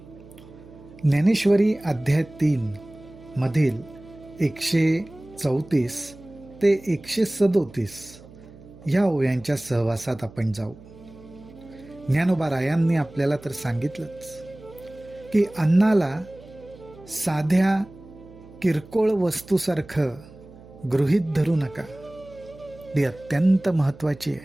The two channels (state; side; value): noise; right; hum, 20 dB below the sound